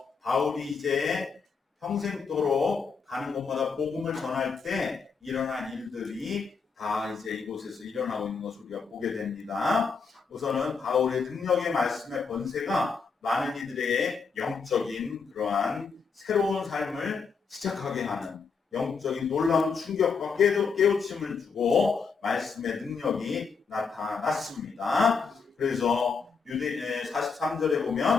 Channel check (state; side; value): quieter; right; 5.3 dB